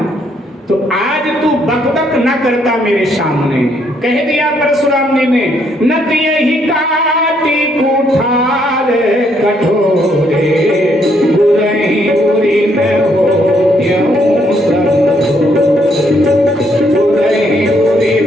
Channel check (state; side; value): normal; both; correlation 0.71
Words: तो आज तू बकबक न करता मेरे सामने। कह दिया परशुराम जी ने, नत यही काटी कुठार कठोरे, बुरही बुरी न हो त्यों सब, बुरही बुरी